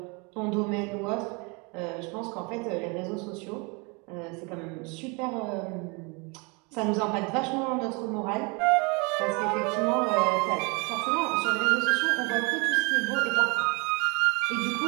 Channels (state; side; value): quieter; left; 30.6 dB